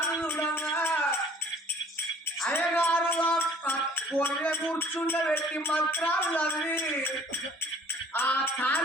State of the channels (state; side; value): normal; both; correlation 0.54